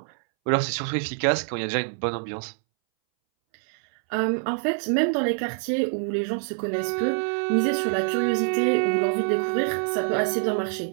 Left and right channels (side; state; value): left; silent; 62 dB below the other